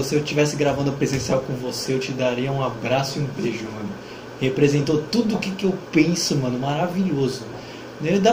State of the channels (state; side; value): identical; both; correlation 1.00